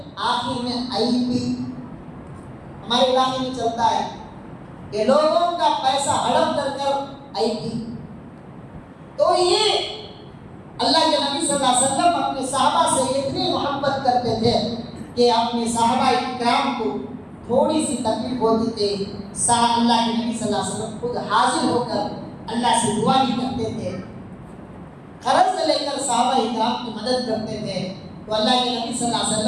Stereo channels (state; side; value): identical; both; correlation 1.00